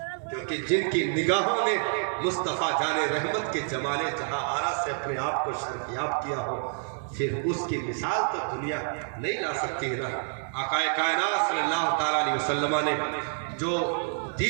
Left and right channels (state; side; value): silent; left; 59 dB below the other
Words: क्योंकि जिनकी निगाहों ने मुस्तफ़ा जाने रहमत के जमाने जहां आरा से अपने आप को शर्फियाब किया हो, फिर उसकी मिसाल तो दुनिया नहीं ला सकती है ना। आकाए कायनात सल्लल्लाहु ताला अलैहि वसल्लम ने जो